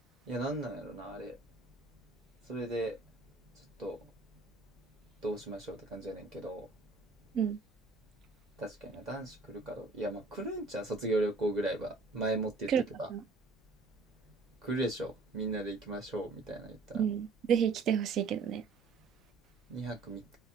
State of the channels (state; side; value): quieter; left; 4.0 dB